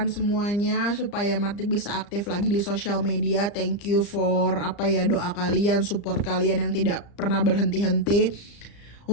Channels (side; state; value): right; late; 34 ms